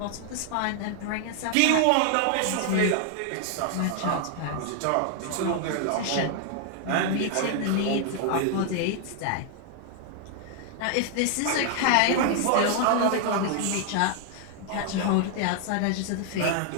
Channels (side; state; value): both; different; correlation 0.00